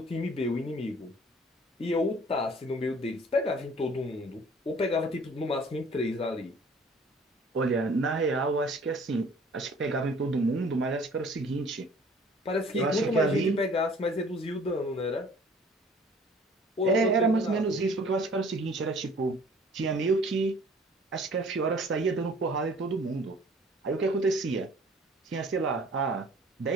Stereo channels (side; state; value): both; normal; correlation 0.52